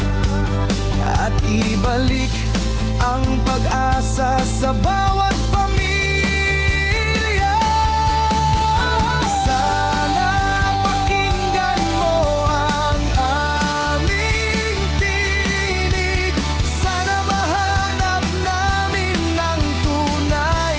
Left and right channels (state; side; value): identical; both; correlation 1.00